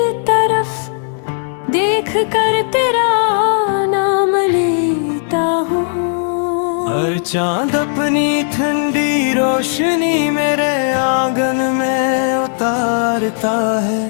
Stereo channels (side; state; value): right; silent; digital silence